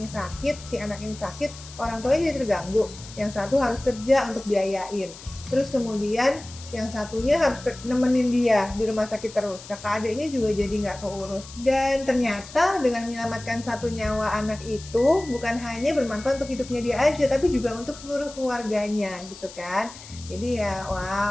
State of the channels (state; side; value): noise; left; hiss, 16 dB below the sound